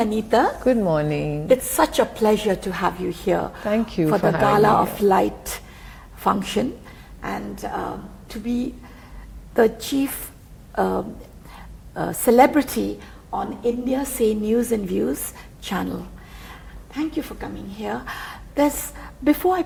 Anita. Good morning. It's such a pleasure to have you here. Thank you for the for Gala having of Light function, and to be the chief celebrity on India Say News and Views channel. Thank you for coming here. Before I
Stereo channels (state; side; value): identical; both; correlation 1.00